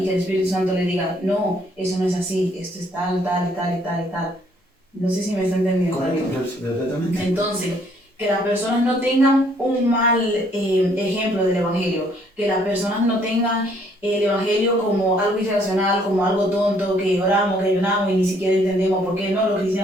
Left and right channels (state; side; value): normal; both; correlation 0.65